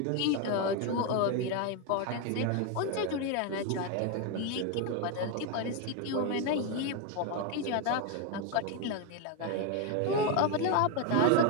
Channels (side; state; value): both; different; correlation 0.02